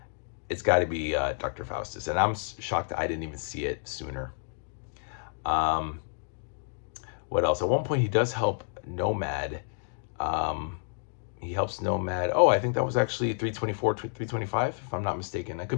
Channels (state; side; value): silent; right; digital silence